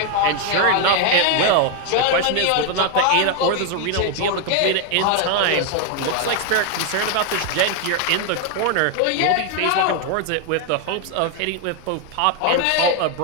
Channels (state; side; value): different; both; correlation 0.01